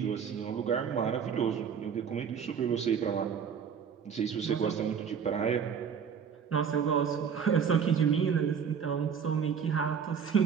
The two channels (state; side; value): quieter; left; 7.1 dB